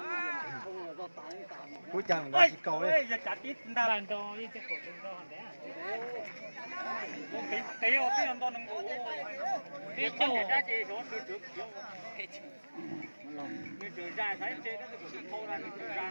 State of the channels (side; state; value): both; inverted; correlation -1.00